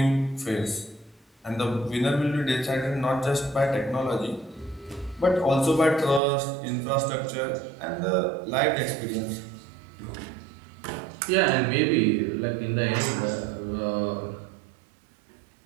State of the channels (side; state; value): left; drops out; at 6.2 s